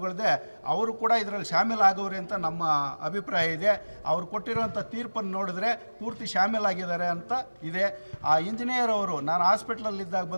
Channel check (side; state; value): both; inverted; correlation -1.00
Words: ಅವರು ಕೂಡ ಇದರಲ್ಲಿ ಶಾಮೀಲಾಗವ್ರೆ ಅಂತ ನಮ್ಮ ಅಭಿಪ್ರಾಯ ಇದೆ. ಅವ್ರು ಕೊಟ್ಟಿರೋಂಥ ತೀರ್ಪನ್ನು ನೋಡಿದ್ರೆ ಪೂರ್ತಿ ಶಾಮೀಲಾಗಿದ್ದಾರೆ ಅಂತ ಇದೆ. ಆ ಇಂಜಿನಿಯರ್ ಅವರು ನಾನು ಹಾಸ್ಪಿಟ್ಲಲ್ಲಿದ್ದಾಗ